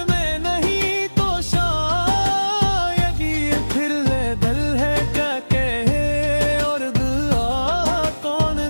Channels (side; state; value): both; inverted; correlation -1.00